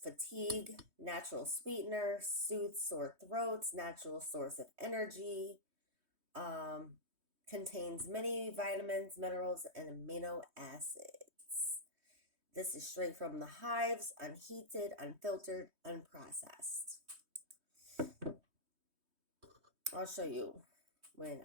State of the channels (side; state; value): left; late; 3.2 ms